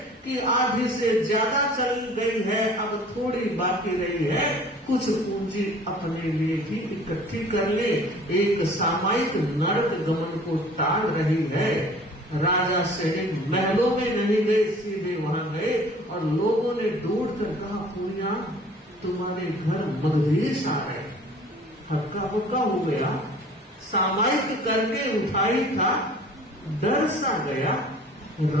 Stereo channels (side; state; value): both; normal; correlation 0.49